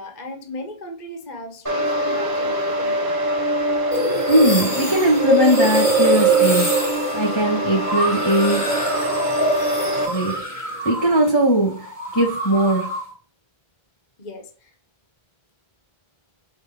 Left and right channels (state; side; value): late; right; 1.5 ms